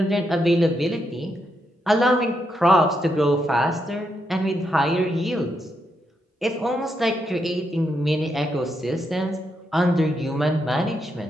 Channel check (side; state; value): both; normal; correlation 0.81